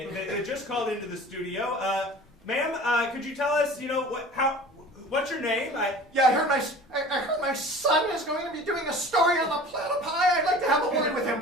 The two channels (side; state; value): both; normal; correlation 0.42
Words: just called into the studio. Ma'am, could you tell us, what's your name? I heard my son is going to be doing a story on the platypi. I'd like to have a word with him,